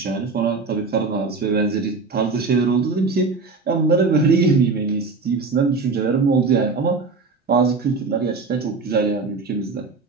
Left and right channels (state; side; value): quieter; left; 4.2 dB